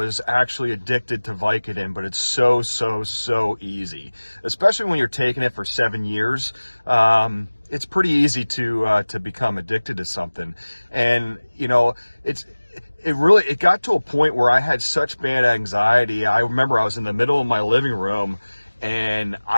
actually addicted to Vicodin, but it's so easy, especially when you're taking it for 7 years. It's pretty easy to become addicted to something. And, it got to a point where I had such bad anxiety. I remember I was in the middle of my living room, and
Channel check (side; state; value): both; inverted; correlation -1.00